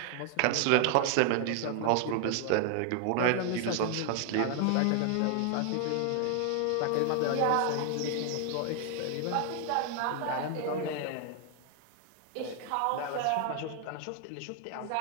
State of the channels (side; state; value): both; different; correlation 0.00